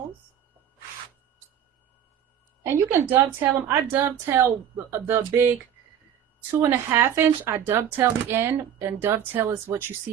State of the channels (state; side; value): quieter; left; 9.3 dB